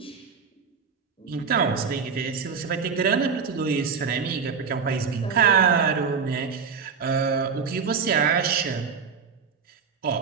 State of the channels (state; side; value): quieter; left; 6.0 dB